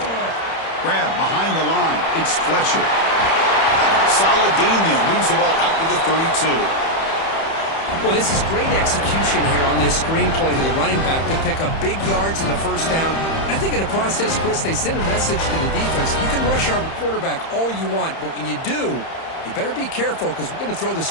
Grab behind the line. It's Fletcher. Solid gain there. Moves the ball out to the 32. Well, this is great execution here on this screenplay to the running back to pick up big yards in the first down. And I think in the process, Chris, they send a message to the defense. You can rush our quarterback all you want, but when you do, you better be careful because we're going to throw the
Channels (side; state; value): right; late; 31 ms